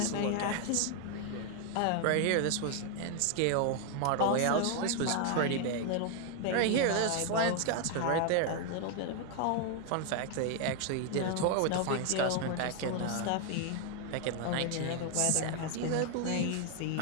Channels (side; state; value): both; different; correlation 0.01